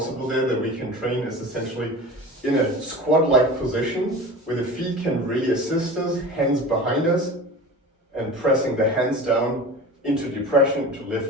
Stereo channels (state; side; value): normal; both; correlation 0.35